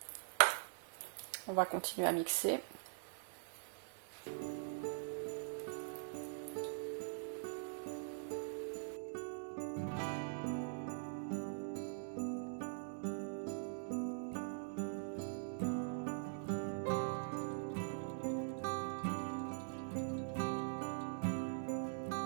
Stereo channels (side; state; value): left; silent; digital silence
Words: On va continuer à mixer.